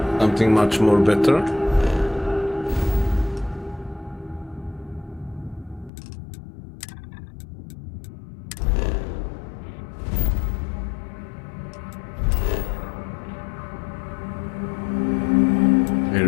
something much more better.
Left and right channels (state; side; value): drops out; right; at 5.9 s